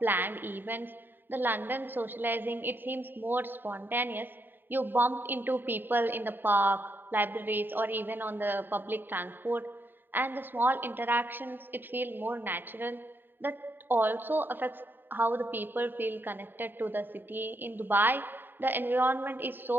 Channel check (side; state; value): left; late; 0.093 ms